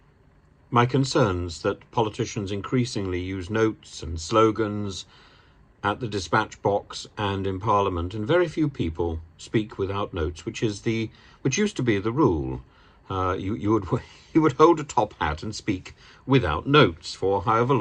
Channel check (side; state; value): both; identical; correlation 1.00